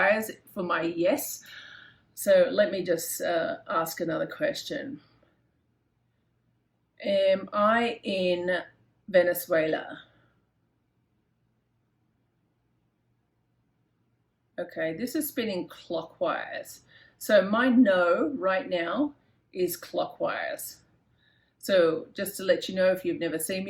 for my yes. So let me just ask another question. Am I in Venezuela? Okay, this is spinning clockwise. So my no right now is clockwise. So just to let you know, if you've never seen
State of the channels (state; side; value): identical; both; correlation 1.00